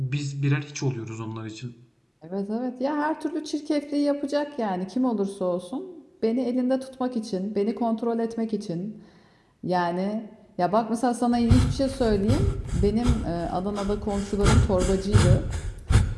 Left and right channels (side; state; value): both; identical; correlation 1.00